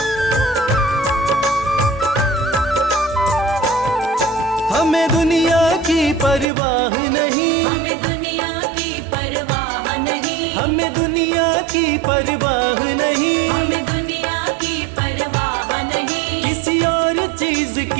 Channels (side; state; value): left; drops out; at 6.5 s